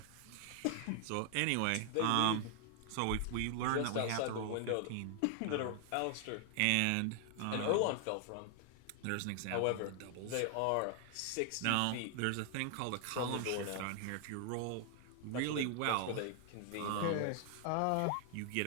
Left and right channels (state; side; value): different; both; correlation 0.00